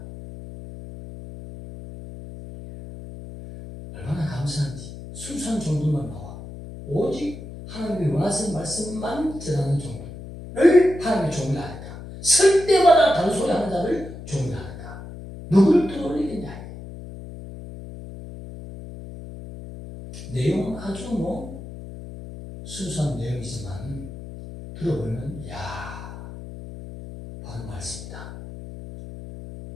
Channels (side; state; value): left; noise; hum, 12 dB below the sound